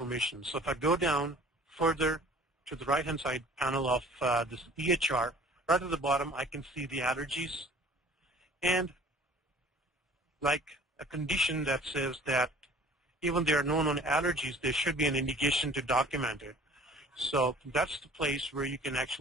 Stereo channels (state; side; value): normal; both; correlation 0.48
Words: So if I go down further to the right-hand side panel of this EHR, right at the bottom, I can see the allergies. And like a condition that says that even there are no known allergies, there should be an indication to document it. So that's the place where you can